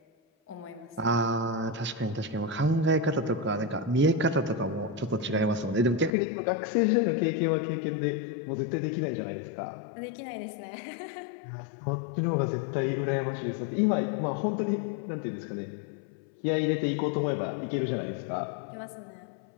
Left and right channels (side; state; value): right; drops out; at 6.2 s